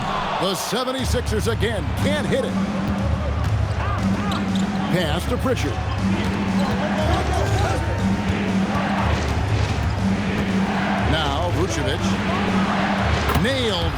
The 76ers again can't hit it. Pass to Pritchard. Now Vucevic. Nailed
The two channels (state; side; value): identical; both; correlation 1.00